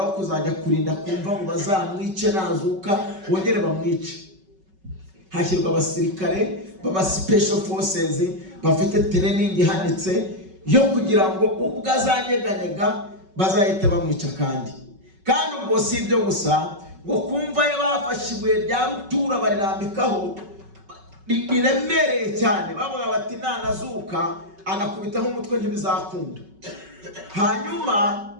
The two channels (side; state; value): left; late; 5.3 ms